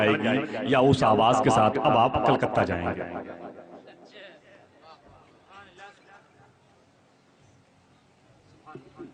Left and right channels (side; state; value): both; identical; correlation 1.00